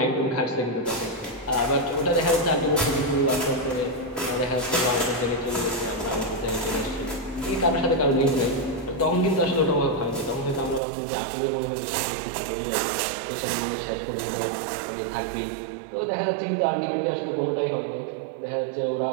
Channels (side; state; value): left; drops out; at 10.8 s